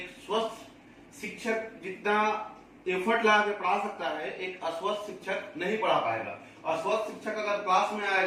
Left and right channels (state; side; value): identical; both; correlation 1.00